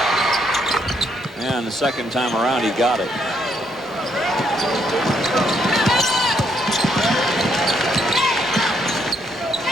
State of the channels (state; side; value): normal; both; correlation 0.73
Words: And the second time around, he got it.